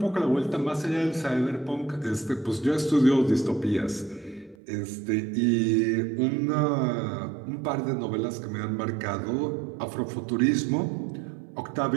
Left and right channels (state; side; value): drops out; left; at 4.5 s